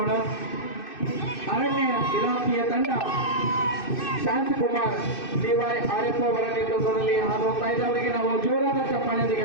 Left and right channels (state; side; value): late; right; 2.6 ms